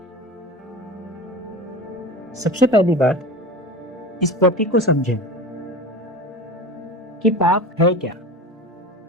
सबसे पहली बात, इस प्रतीक को समझें कि पाप है क्या।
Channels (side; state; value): both; normal; correlation 0.32